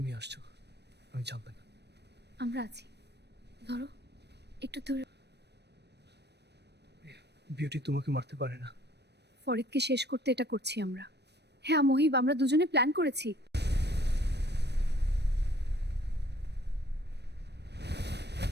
আসছো, আমি জানতাম না। আমরা আছি, ধরো একটু দূরে। বিউটি তোমাকে মারতে পারে না। ফরিদকে শেষ করতে এটা করছি আমরা। হ্যাঁ মহিব, আমরা দুজনে প্ল্যান করেছি।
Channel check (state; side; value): late; left; 0.49 ms